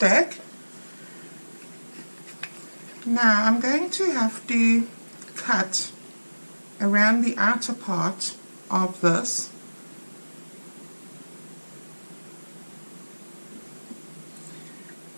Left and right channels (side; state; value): both; inverted; correlation -1.00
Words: Now I'm going to have to cut around the outer part of this,